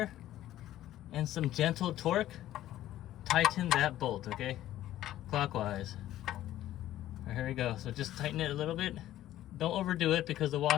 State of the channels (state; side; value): quieter; right; 13.5 dB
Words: and some gentle torque, tighten that bolt, okay? Clockwise. All right, here we go. So just tighten it a little bit. Don't overdo it because the